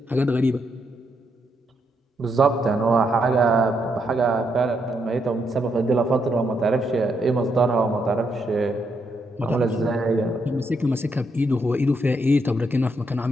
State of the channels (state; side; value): normal; both; correlation 0.78